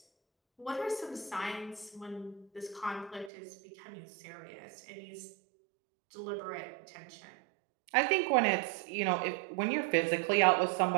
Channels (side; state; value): left; drops out; at 3.3 s